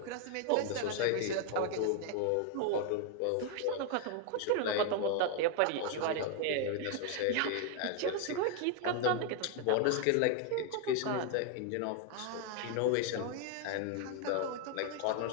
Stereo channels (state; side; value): different; both; correlation 0.01